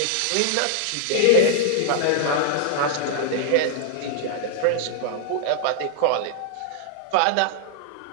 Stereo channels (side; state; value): both; different; correlation -0.01